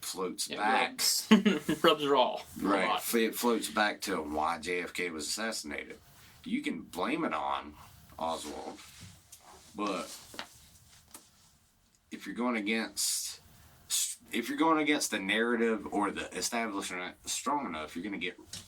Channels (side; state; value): both; identical; correlation 1.00